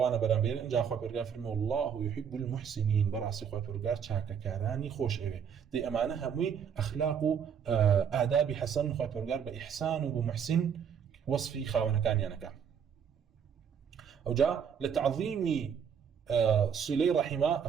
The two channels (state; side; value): quieter; left; 7.5 dB